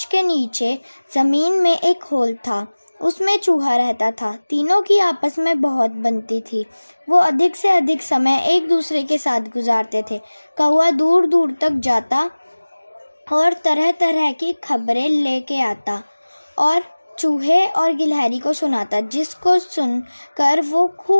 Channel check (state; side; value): inverted; both; correlation -1.00